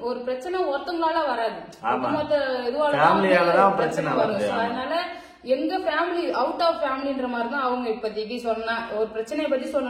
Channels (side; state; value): both; identical; correlation 1.00